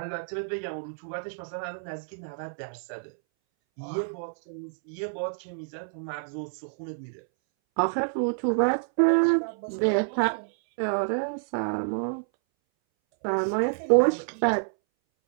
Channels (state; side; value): silent; left; 59 dB below the other